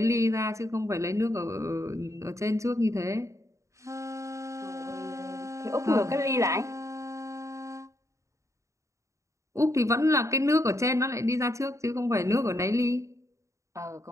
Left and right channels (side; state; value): left; late; 0.15 ms